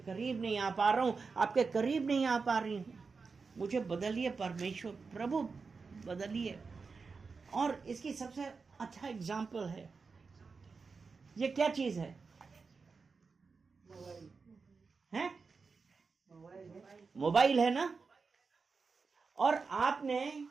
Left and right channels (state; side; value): quieter; left; 4.7 dB